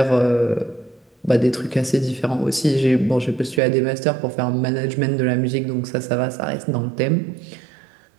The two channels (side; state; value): left; drops out; at 3.6 s